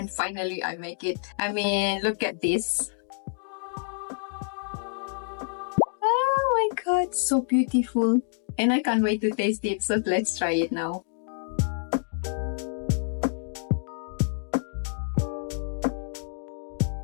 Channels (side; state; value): right; silent; digital silence